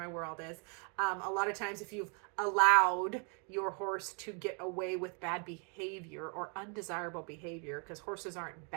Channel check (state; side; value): quieter; left; 38.0 dB